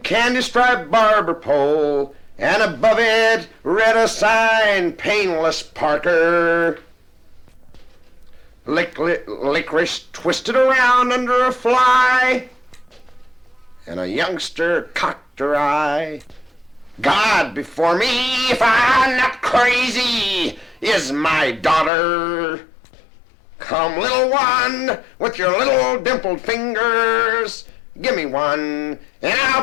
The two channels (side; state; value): right; drops out; at 21.9 s